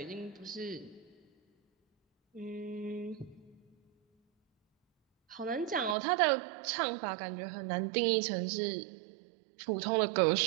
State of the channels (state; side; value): drops out; left; at 6.0 s